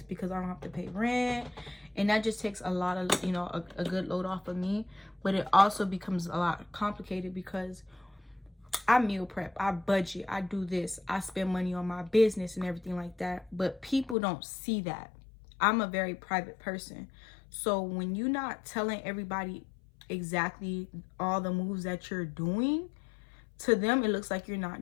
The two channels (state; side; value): drops out; right; at 14.2 s